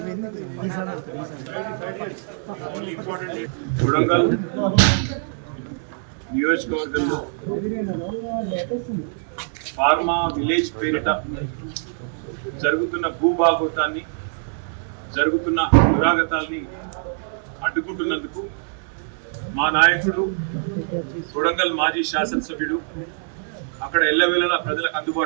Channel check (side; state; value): left; silent; 57 dB below the other